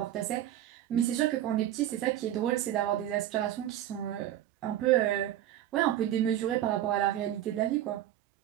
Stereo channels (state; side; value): quieter; left; 12.2 dB